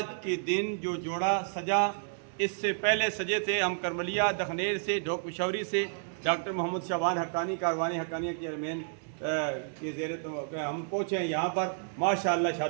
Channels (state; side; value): silent; left; digital silence